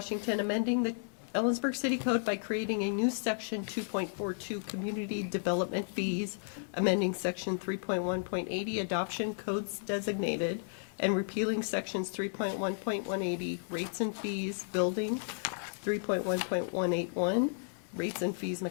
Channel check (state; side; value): silent; right; digital silence